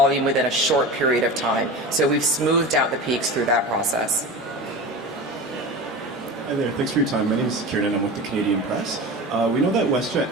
within a short period of time. So we've smoothed out the peaks through that process. Hi there, thanks for your time. My name is Kieran and I'm with the Canadian Press. We know that WestJet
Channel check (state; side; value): normal; both; correlation 0.30